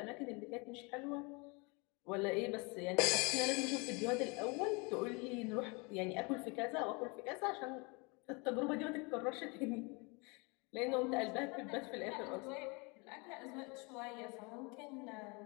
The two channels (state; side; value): quieter; right; 29.7 dB